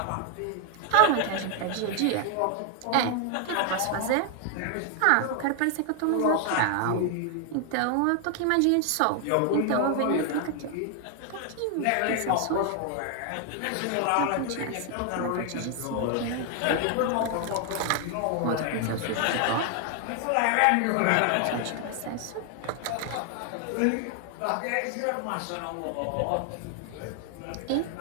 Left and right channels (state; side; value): different; both; correlation 0.00